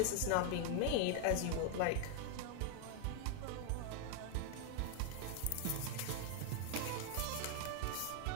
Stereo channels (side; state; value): both; different; correlation 0.01